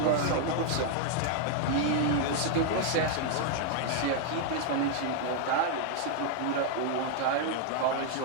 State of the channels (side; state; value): both; different; correlation 0.00